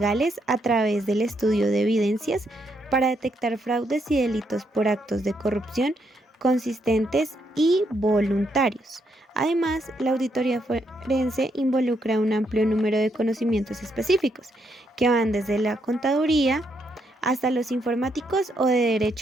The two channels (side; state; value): both; normal; correlation 0.77